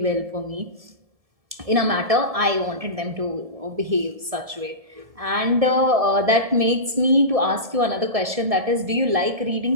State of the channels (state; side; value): late; left; 1.7 ms